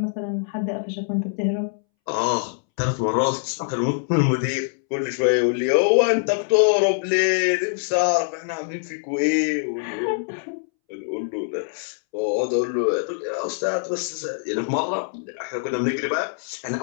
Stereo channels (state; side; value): silent; right; 63 dB below the other